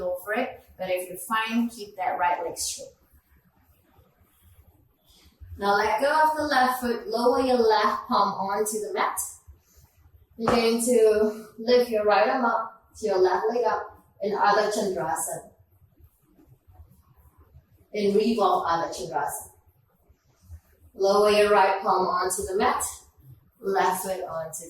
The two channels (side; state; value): both; identical; correlation 1.00